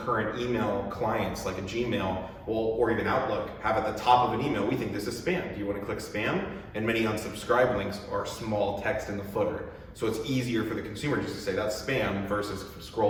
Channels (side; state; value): both; identical; correlation 1.00